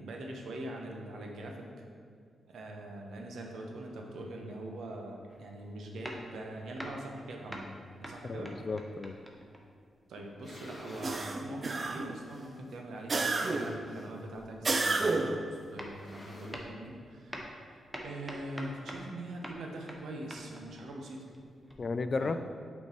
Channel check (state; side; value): normal; both; correlation 0.86